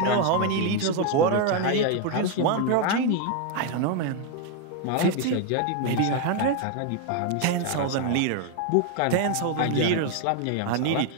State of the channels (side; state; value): both; different; correlation 0.01